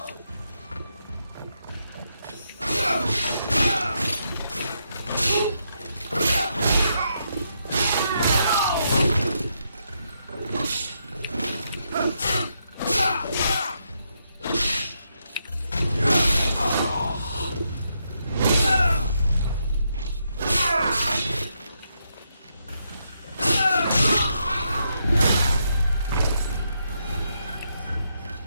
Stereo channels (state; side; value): inverted; both; correlation -0.80